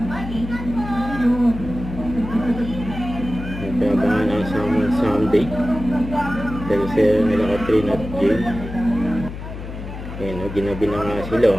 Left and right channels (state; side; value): noise; left; hum, 9 dB below the sound